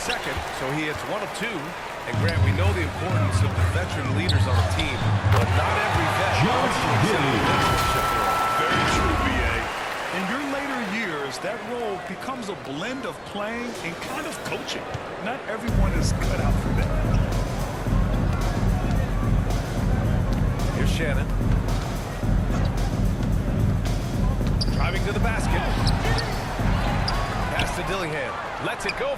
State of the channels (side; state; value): both; identical; correlation 1.00